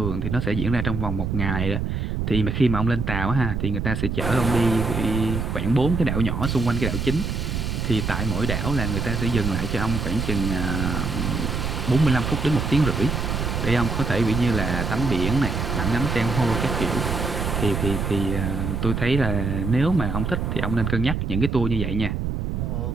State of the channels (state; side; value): noise; right; rumble, 2 dB below the sound